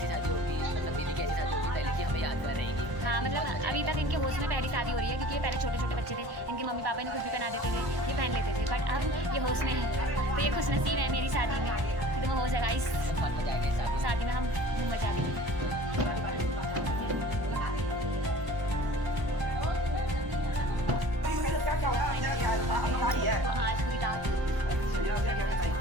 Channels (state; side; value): late; left; 1.0 ms